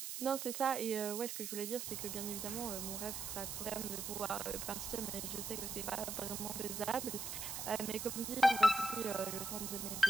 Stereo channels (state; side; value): noise; right; hiss, 5 dB below the sound